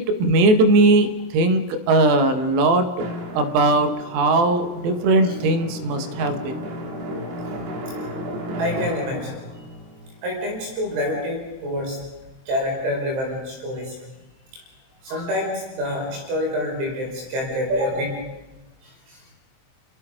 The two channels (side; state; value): left; late; 23 ms